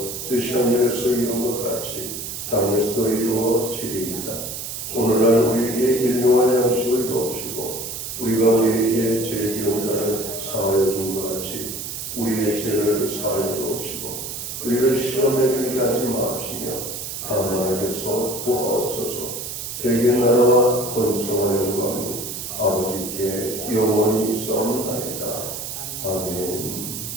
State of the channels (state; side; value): noise; right; hiss, 7 dB below the sound